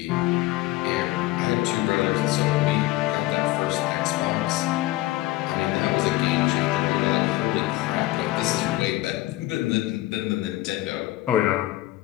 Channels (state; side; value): quieter; right; 17.5 dB